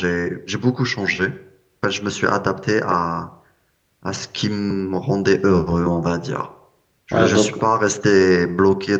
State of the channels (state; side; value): identical; both; correlation 1.00